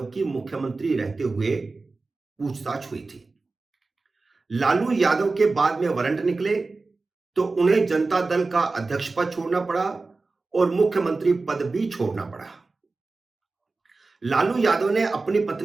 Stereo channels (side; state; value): left; quieter; 3.7 dB